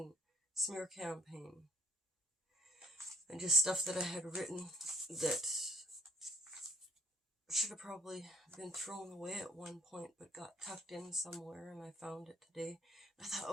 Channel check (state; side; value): normal; both; correlation 0.58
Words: smear campaign. And just stuff that I had written that should have probably been thrown away at one point, but got tucked in somewhere, and I found it today. I thought,